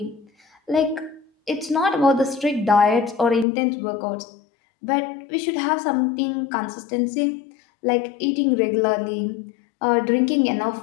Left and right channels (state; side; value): drops out; right; at 3.5 s